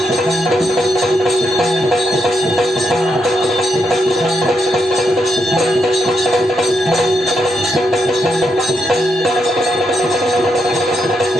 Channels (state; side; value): normal; both; correlation 0.81